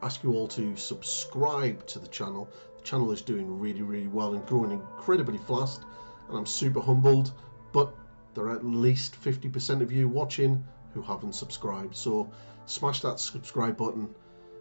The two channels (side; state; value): both; inverted; correlation -1.00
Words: ask you all to subscribe to the channel. The channel is doing really well and growing incredibly fast and I'm super humbled, but there are at least 50% of you watching who haven't subscribed. So smash that subscribe button,